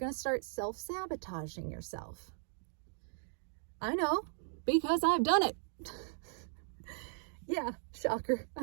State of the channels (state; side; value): silent; left; digital silence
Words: start self-sabotaging yourself. I know, because I've done it. Yeah, shocker,